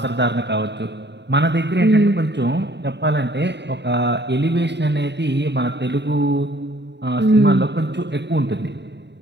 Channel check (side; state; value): left; late; 0.50 ms